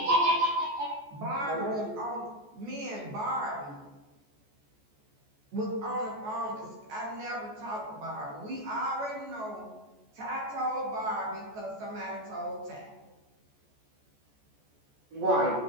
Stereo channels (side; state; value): left; late; 14 ms